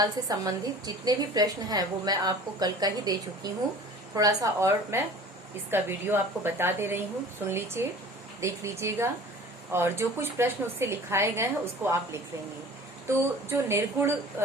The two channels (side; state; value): both; normal; correlation 0.43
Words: से संबंधित जितने भी प्रश्न हैं वो मैं आपको कल का ही दे चुकी हूँ। थोड़ा सा और मैं इसका वीडियो आपको बता दे रही हूँ, सुन लीजिए, देख लीजिएगा, और जो कुछ प्रश्न उससे लिखाए गए हैं उसको आप लिख लेंगे। तो जो निर्गुण